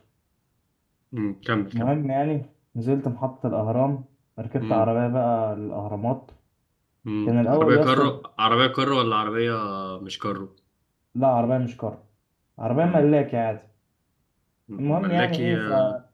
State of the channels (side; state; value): both; identical; correlation 1.00